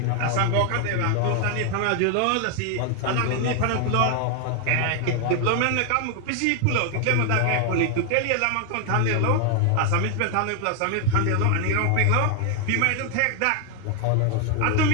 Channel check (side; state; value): both; different; correlation 0.00